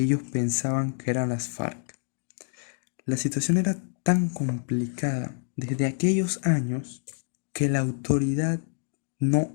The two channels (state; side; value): silent; right; 60 dB below the other